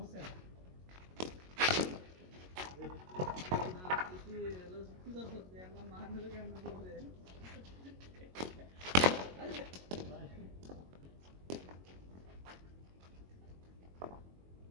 না তুই কি করছিস আমরা মারলে কেমন বলরে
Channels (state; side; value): late; left; 22 ms